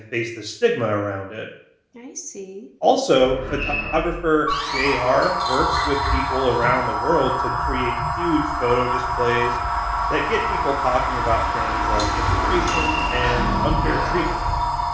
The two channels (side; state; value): both; identical; correlation 1.00